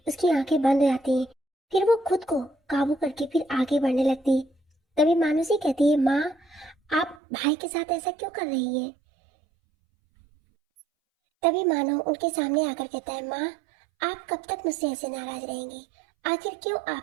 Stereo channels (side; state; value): left; drops out; at 7.2 s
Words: उसकी आंखें बंद हो जाती हैं। फिर वो खुद को काबू करके फिर आगे बढ़ने लगती है। तभी मानुषी कहती है, माँ, आप भाई के साथ ऐसा क्यों कर रही है। तभी मानो उनके सामने आकर कहता है, माँ, आप कब तक मुझसे ऐसे नाराज रहेंगी। आखिर क्यों